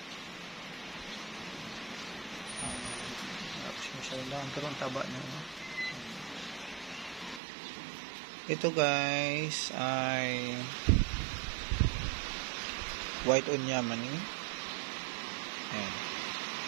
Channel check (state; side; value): drops out; left; at 7.4 s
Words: masyadong lang, pero ang taba niya. Ito guys ay white onyamani. Ayan.